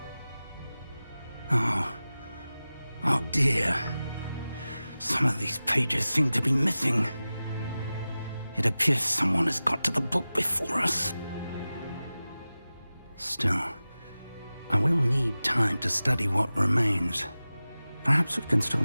Oh dear. Some of these pages seem to be missing. It appears someone has got to the book before us. Still, I will need time to study what remains. Perhaps we can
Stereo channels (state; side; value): inverted; both; correlation -0.96